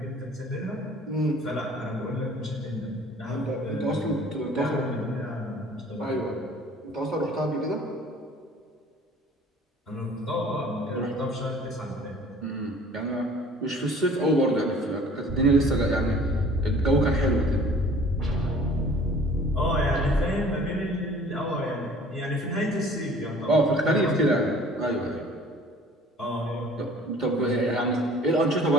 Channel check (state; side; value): normal; both; correlation 0.50